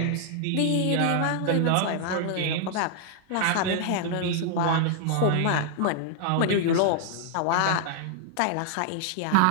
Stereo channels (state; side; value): different; both; correlation -0.01